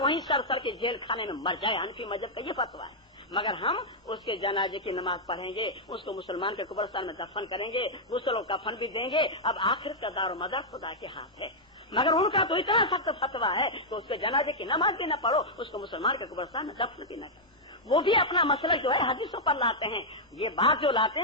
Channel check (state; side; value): normal; both; correlation -0.05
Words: सर के जेल खाने में मर जाए। हनफी मजहब का ये फतवा है। मगर हम उसके जनाजे की नमाज पढ़ेंगे, उसको मुसलमान के कब्रिस्तान में दफन करेंगे, गुस्ल और कफन भी देंगे। अब आखिर का दारो मदार खुदा के हाथ है। मगर उनका तो इतना सख्त फतवा है कि उसके जनाजे की नमाज भी न पढ़ो, उसको मुसलमान के कब्रिस्तान में दफन भी न करो। वो भी अपना मसला जो है हदीसों पर लाते हैं। ये बात जो लाते